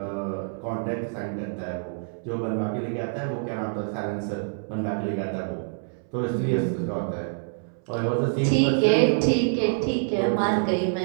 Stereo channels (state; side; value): silent; left; 61 dB below the other